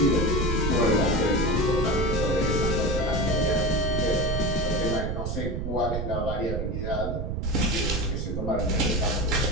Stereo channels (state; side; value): noise; right; rumble, 3 dB below the sound